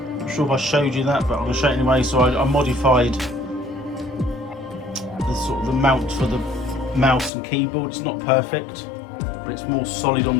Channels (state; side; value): drops out; right; at 7.3 s